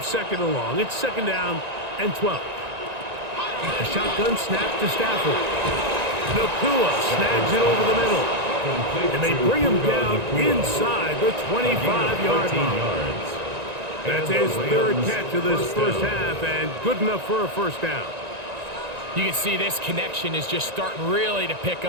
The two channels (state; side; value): late; left; 1.9 ms